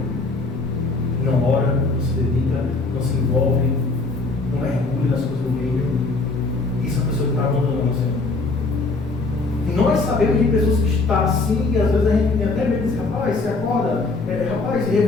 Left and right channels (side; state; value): right; quieter; 3.6 dB